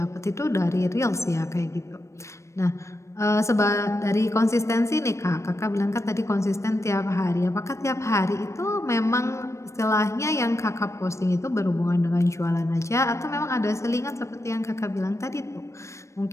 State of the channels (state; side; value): late; right; 0.14 ms